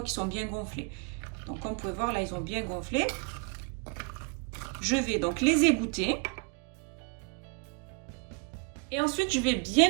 qu'ils sont bien gonflés. Donc comme vous pouvez voir là ils ont bien gonflé. Je vais donc les égoutter. Et ensuite je vais bien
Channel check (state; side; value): quieter; left; 34.8 dB